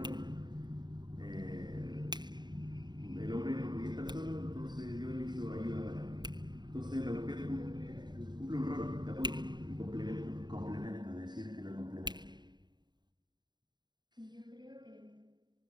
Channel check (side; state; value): left; late; 0.21 ms